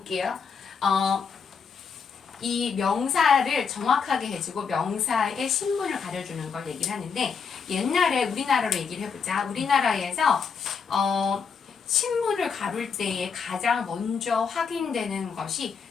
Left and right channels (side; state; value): right; quieter; 5.9 dB